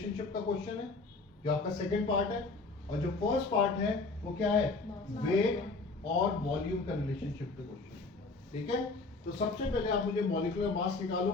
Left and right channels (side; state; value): right; quieter; 3.7 dB